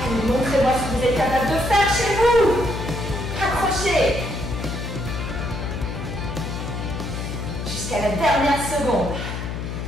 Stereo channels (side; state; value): left; noise; hum, 5 dB below the sound